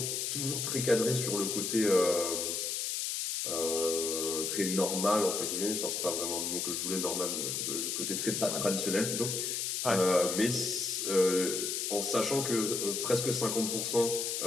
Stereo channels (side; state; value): left; noise; hiss, 1 dB below the sound